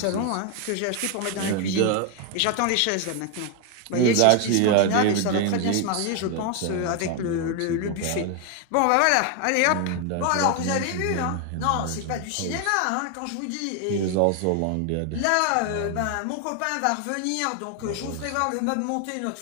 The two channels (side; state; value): both; different; correlation 0.01